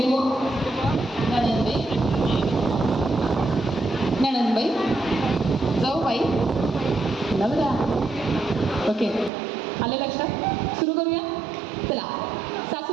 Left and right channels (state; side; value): drops out; left; at 9.3 s